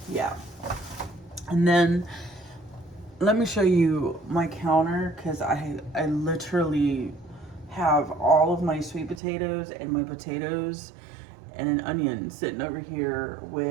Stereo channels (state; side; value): drops out; left; at 9.2 s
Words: yeah. And then let me show you my counter, because I literally have all of my sweet potatoes and my potatoes and an onion sitting over here